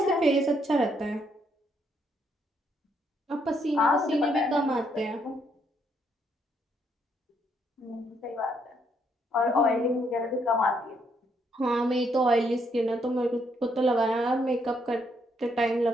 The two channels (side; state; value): both; normal; correlation 0.73